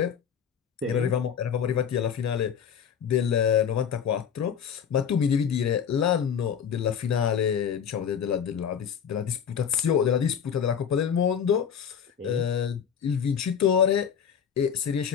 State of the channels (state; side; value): quieter; right; 7.8 dB